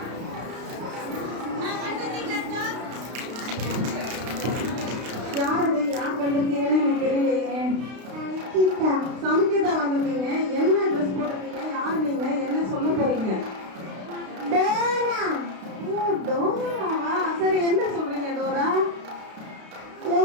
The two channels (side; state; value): left; late; 32 ms